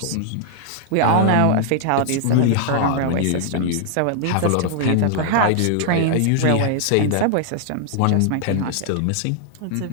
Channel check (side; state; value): both; different; correlation -0.01